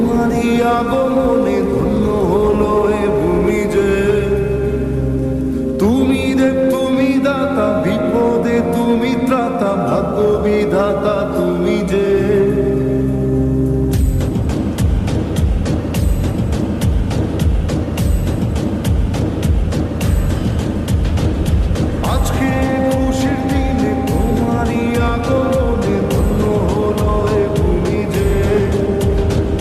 আগমনে ধন্য হলো এ ভূমি যে। তুমি দেব তুমি দাতা, বিপদে তুমি ত্রাতা, ভাগ্য বিধাতা তুমি যে। আজকে খুশির দিনে তোমারই আগমনে ধন্য হলো এ ভূমি যে।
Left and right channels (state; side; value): identical; both; correlation 1.00